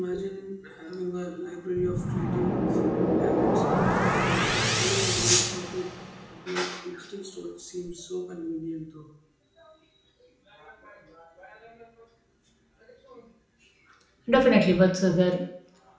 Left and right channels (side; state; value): both; identical; correlation 1.00